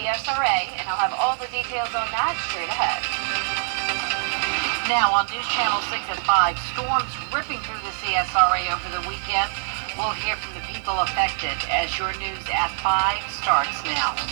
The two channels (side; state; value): left; silent; digital silence